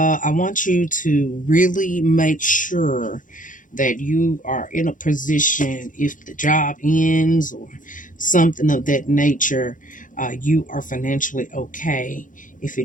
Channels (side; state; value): right; late; 0.38 ms